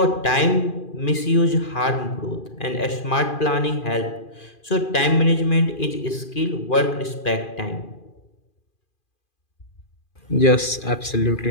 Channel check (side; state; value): right; late; 2.4 ms